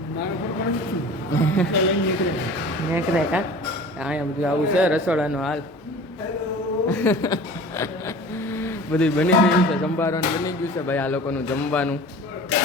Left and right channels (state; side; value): normal; both; correlation 0.41